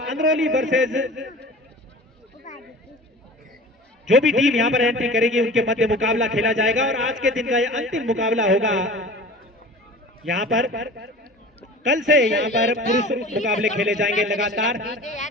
वर्सेस जो भी टीम यहाँ पर एंट्री करेगी उनके मध्य मुकाबला खेला जाएगा। और आज के दिन का यह अंतिम मुकाबला होगा। यहाँ पर कल से यहाँ पर पुरुष मुकाबले खेले जाएंगे लगातार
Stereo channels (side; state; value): both; normal; correlation 0.39